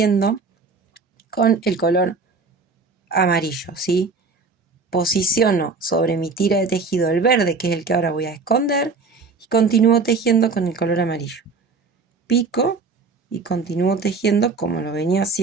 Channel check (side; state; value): left; quieter; 4.3 dB